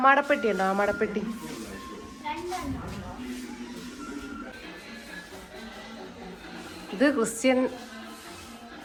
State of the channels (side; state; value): both; identical; correlation 1.00